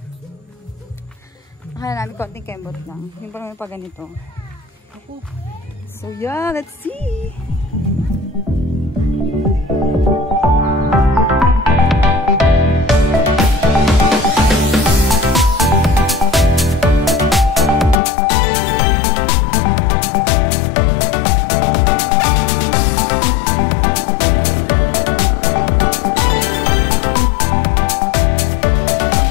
akala namin konting kembot lang. Yung parang pa ganito. So, yeah. Let's see!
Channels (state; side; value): drops out; right; at 18.0 s